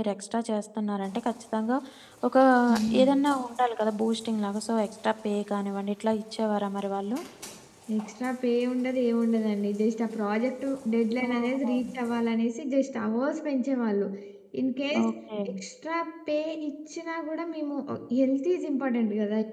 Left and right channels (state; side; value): identical; both; correlation 1.00